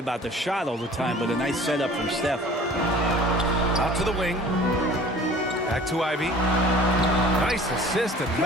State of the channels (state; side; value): normal; both; correlation 0.47